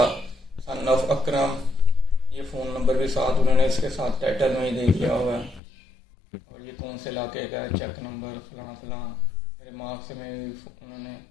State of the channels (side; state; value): right; drops out; at 5.6 s